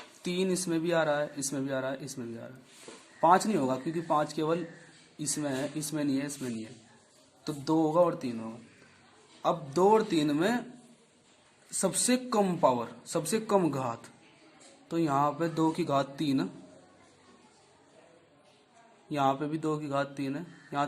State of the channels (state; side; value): identical; both; correlation 1.00